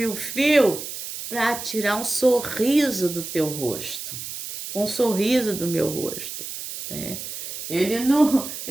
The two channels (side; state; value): right; noise; hiss, 8 dB below the sound